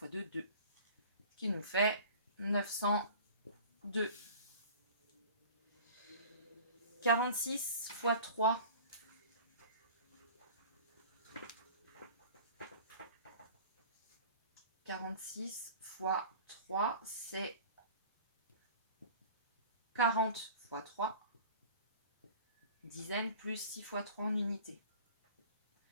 2, 2. Ce qui nous fait 902. 46 fois 3. 46 fois 3, c'est 40 fois 3. Dizaines plus 6 fois 3 en unité.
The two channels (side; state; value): both; inverted; correlation -0.42